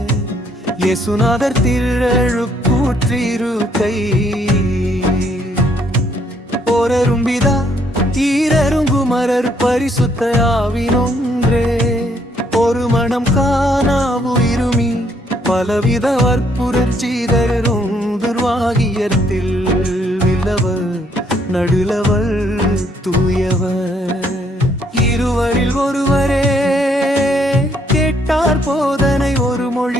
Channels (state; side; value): normal; both; correlation 0.69